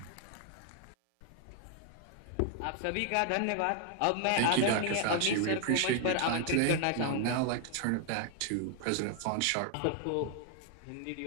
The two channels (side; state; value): both; different; correlation 0.00